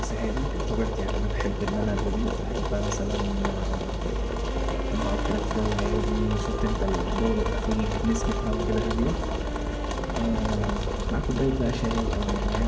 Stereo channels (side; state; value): both; identical; correlation 1.00